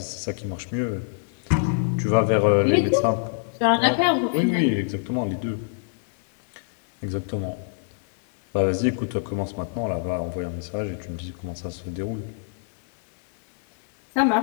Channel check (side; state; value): right; silent; 58 dB below the other